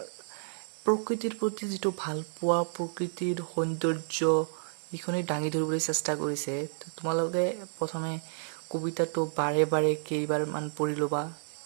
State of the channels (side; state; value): left; silent; digital silence